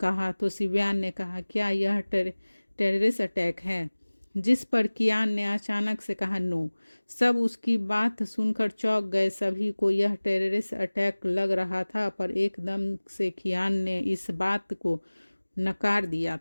तो शिवयान ने कहा, क्या यह टेररिस्ट अटैक है? जिस पर कियान ने अचानक से कहा, नो। सब उसकी बात सुनकर चौंक गए। सभी को यह टेररिस्ट अटैक लग रहा था पर एकदम से कियान ने इस बात को नकार दिया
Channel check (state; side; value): inverted; both; correlation -1.00